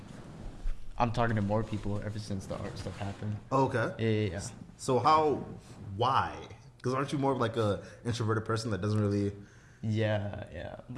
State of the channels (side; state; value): both; identical; correlation 1.00